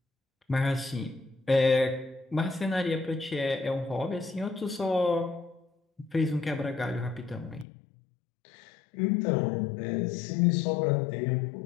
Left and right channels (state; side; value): drops out; right; at 7.7 s